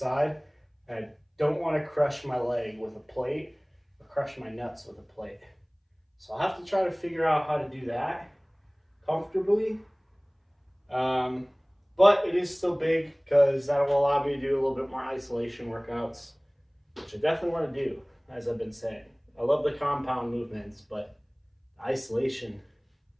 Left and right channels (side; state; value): both; identical; correlation 1.00